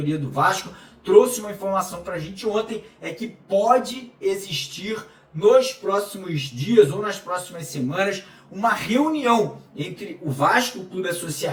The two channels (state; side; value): identical; both; correlation 1.00